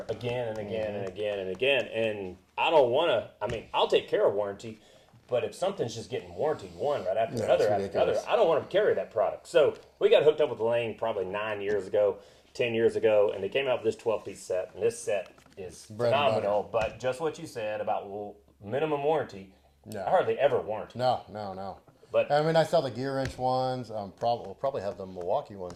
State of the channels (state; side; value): identical; both; correlation 1.00